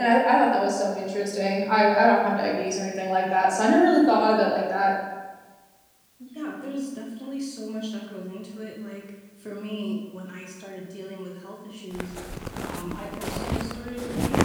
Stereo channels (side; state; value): both; identical; correlation 1.00